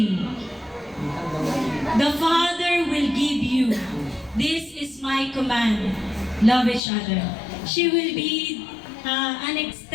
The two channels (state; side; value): drops out; right; at 6.8 s